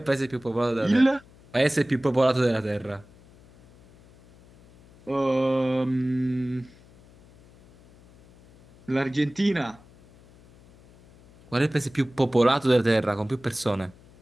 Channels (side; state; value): left; noise; hum, 26 dB below the sound